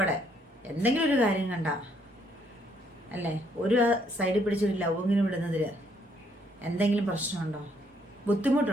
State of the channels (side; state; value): both; normal; correlation 0.69